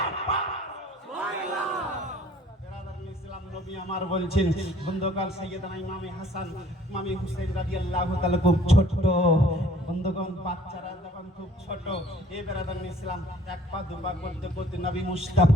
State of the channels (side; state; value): both; normal; correlation 0.56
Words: पार। सुबहानाल्लाह। बेरादर इस्लाम নবী আমার বলছেন বন্ধুগণ সাইয়েদনা ইমামে হাসান ইমামে হুসেন রাদিয়াল্লাহু তাআলা খুব ছোট বন্ধুগণ, বাচ্চারা যখন খুব ছোট এ বেরাদার ইসলাম এক পা দুপা করতে করতে নবী